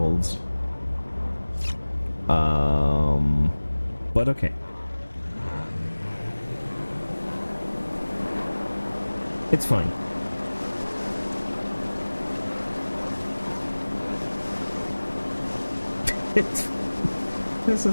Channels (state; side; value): inverted; both; correlation -1.00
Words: But okay. It's fine. This